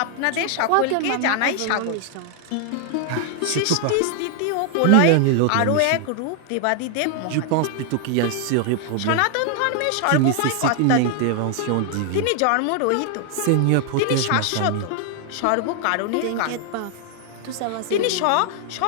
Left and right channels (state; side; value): different; both; correlation 0.00